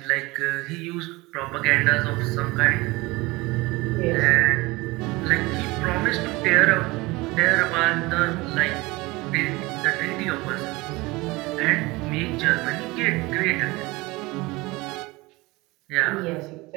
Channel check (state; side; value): quieter; left; 22.3 dB